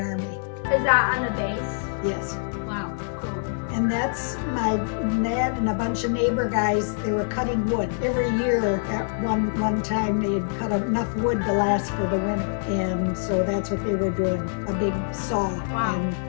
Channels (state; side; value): silent; right; 62 dB below the other